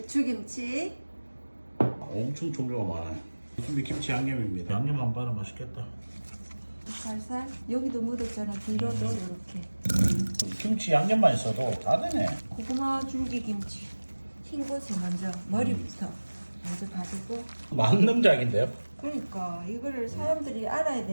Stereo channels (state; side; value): inverted; both; correlation -1.00